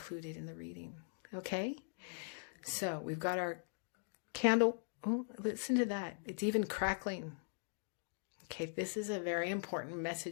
in the reading. Okay? So we've got our candle. Oh, listen to that. It's even crackling. Okay, this is a very important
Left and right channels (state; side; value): silent; right; digital silence